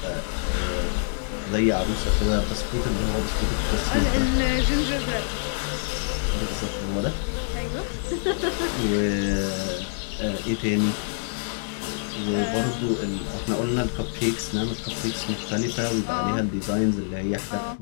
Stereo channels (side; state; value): right; silent; digital silence